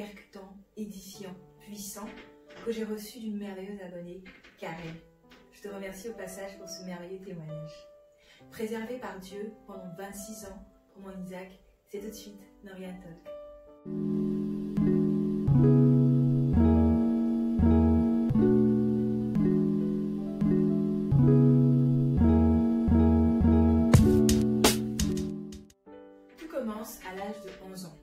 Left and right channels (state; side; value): identical; both; correlation 1.00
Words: édifiant, puissant que j'ai reçu d'une merveilleuse abonnée, Karen. Je te remercie au passage pour ce merveilleux témoignage. Préservé par Dieu pendant 26 ans pour mon Isaac, c'est tout de suite Norian Talk. Tout commence à l'âge de 11 ans.